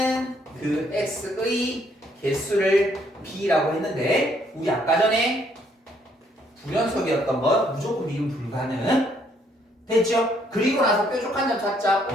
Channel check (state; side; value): normal; both; correlation 0.68